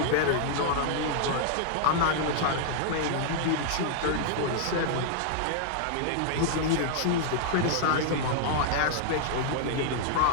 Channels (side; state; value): both; different; correlation -0.01